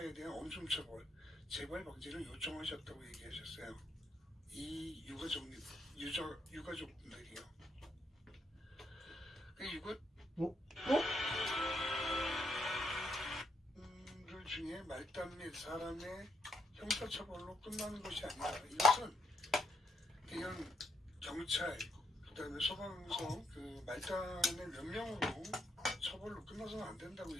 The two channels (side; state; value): both; normal; correlation 0.75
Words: 대한 엄중 처벌, 재발 방지를 요청하셨다고 얘기하셨어요. 이 유가족분들이요. 그 중에 말단 및 사람의 형사처벌로 끝나는 것이 아니다. 이것은 그냥 경찰, 그 다음에 소방서, 그 말단의 몇 명으로 처벌로 끝나서는 안 된다고